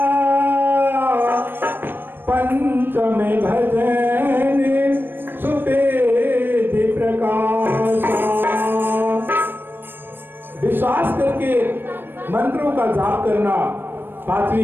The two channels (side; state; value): left; late; 0.097 ms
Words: पंचम भजन सुपेद प्रकाशा। विश्वास करके मंत्रों का जाप करना